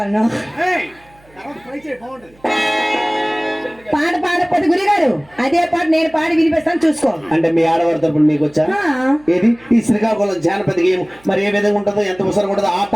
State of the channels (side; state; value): right; noise; hum, 29 dB below the sound